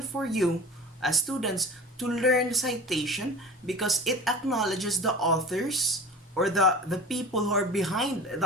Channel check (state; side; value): normal; both; correlation 0.36